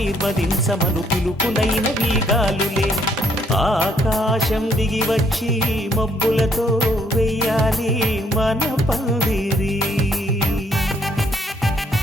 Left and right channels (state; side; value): normal; both; correlation 0.67